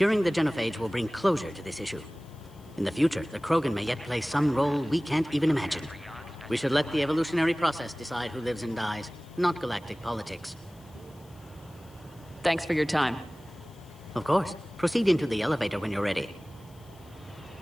the genophage will bring closure to this issue. In the future, the Krogan may yet play some role we can't even imagine. We should let the evolutionary process decide who lives and dies, not galactic politics. Thanks for your time. Of course. Proceed into the elevator when you're ready.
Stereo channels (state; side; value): noise; left; hiss, 28 dB below the sound